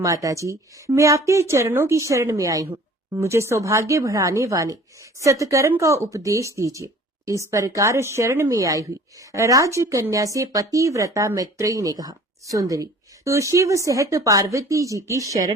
मैं आपके चरणों की शरण में आई हूँ। मुझे सौभाग्य बढ़ाने वाले सत्कर्म का उपदेश दीजिए। इस प्रकार शरण में आई हुई राजकन्या से पतिव्रता मैत्रेयी ने कहा, सुंदरी, तू शिव सहित पार्वती जी की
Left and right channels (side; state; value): both; normal; correlation 0.48